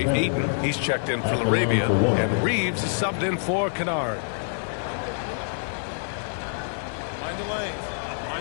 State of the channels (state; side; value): silent; right; 57 dB below the other